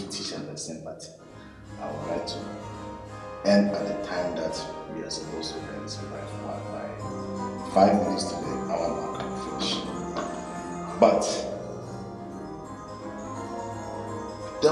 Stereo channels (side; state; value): both; identical; correlation 1.00